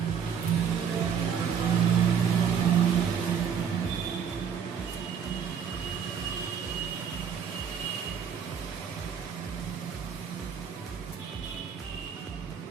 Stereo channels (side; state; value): left; quieter; 7.5 dB